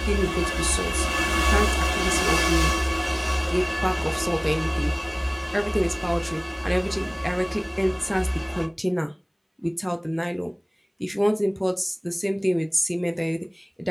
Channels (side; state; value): both; identical; correlation 1.00